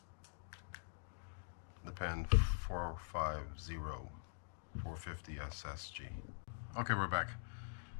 the Penn 450 450 SSG. Okay, we're back.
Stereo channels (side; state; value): right; silent; digital silence